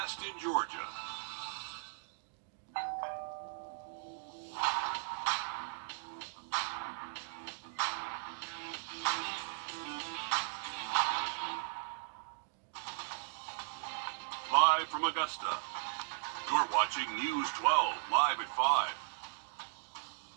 in Georgia. Live from Augusta, you're watching News 12, live at 5.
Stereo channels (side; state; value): left; silent; digital silence